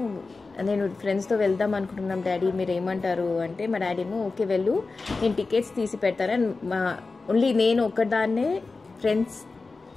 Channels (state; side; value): quieter; right; 3.9 dB